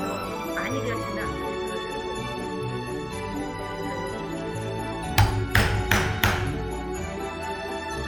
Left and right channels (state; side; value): identical; both; correlation 1.00